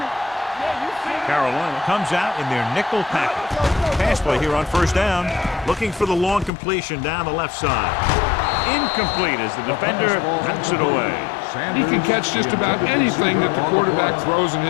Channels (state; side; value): drops out; right; at 6.5 s